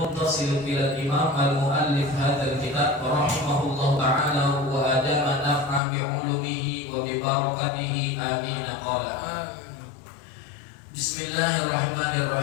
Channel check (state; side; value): drops out; right; at 5.8 s